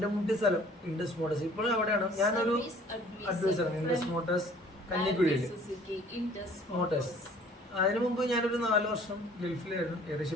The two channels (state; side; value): normal; both; correlation 0.54